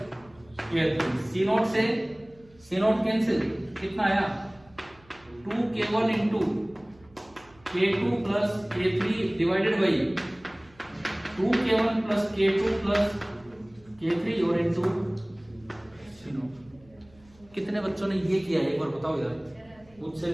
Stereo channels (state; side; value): noise; right; hum, 28 dB below the sound